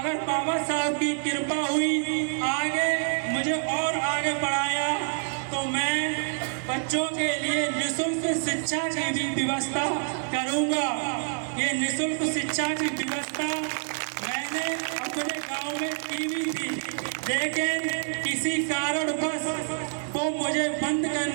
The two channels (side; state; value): left; silent; 60 dB below the other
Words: बाबा साहब की कृपा हुई आगे मुझे और आगे बढ़ाया, तो मैं बच्चों के लिए निःशुल्क शिक्षा की भी व्यवस्था करूंगा। ये निःशुल्क शिक्षा की व्यवस्था मैंने अपने गांव में की भी थी, लेकिन किसी कारणवश वो मुझे बंद